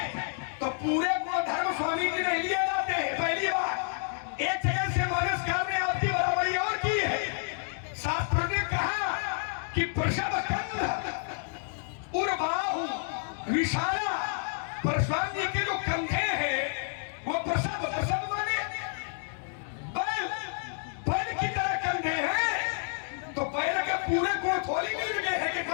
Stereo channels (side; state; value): right; silent; 58 dB below the other